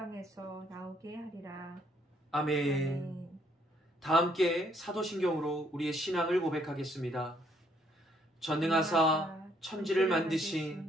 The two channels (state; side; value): normal; both; correlation 0.68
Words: 나오게 하리라. 아멘. 아멘. 다 함께 사도신경으로 우리의 신앙을 고백하겠습니다. 전능하사 천지를